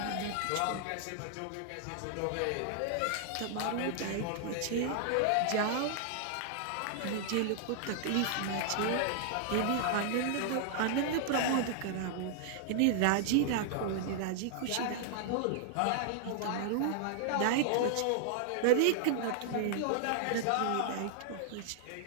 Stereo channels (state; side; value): different; both; correlation -0.01